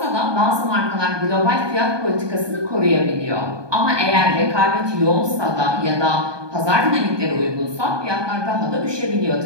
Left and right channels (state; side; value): late; left; 1.2 ms